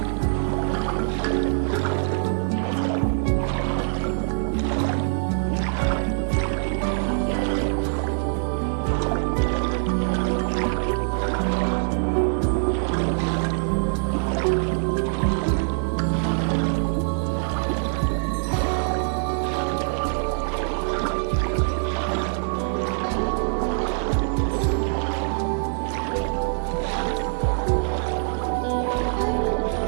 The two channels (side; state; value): left; silent; 56 dB below the other